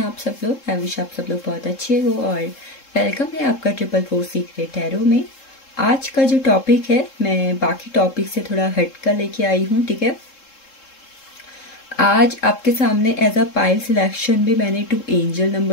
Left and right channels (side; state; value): right; late; 3.7 ms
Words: आप सब लोग? आई विश आप सब लोग बहुत अच्छे हो और वेलकम है आपका 444 सीक्रेट टैरो में। आज का जो टॉपिक है मैं बाकी टॉपिक से थोड़ा हटकर लेके आई हूँ, ठीक है। आज आपके सामने एज अ पाइल सिलेक्शन भी मैंने 2 एंजल